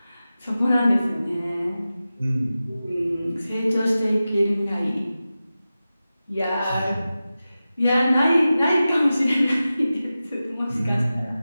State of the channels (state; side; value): inverted; both; correlation -0.94